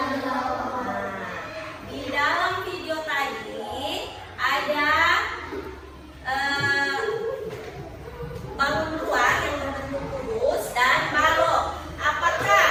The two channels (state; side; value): identical; both; correlation 1.00